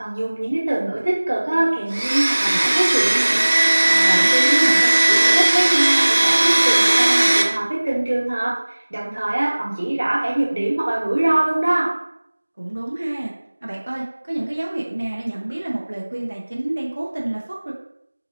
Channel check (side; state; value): both; inverted; correlation -1.00